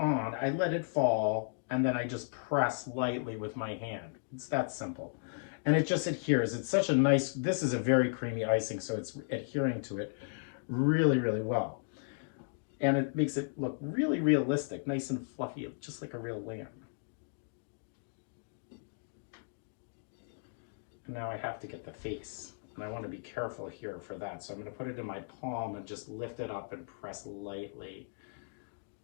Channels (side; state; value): right; silent; digital silence